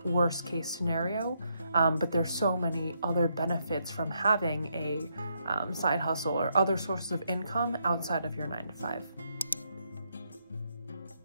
worst case scenario. But there's so many other benefits from having a side hustle or other sources of income outside of your 9 to 5.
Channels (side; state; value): both; inverted; correlation -0.77